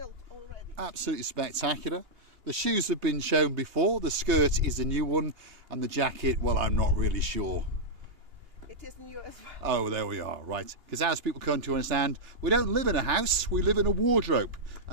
already. Absolutely spectacular. The shoes have been shown before, the skirt is a new one, and the jacket, well, I'm not really sure. It is new as well. Oh, there we are, right. Because as people come to understand, we don't live in a house, we live in a wardrobe.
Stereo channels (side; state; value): left; late; 2.9 ms